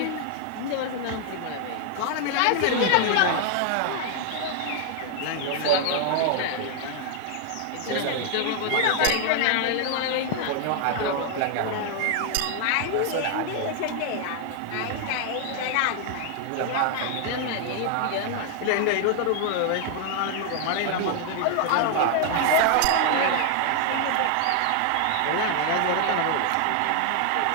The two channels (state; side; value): different; both; correlation 0.00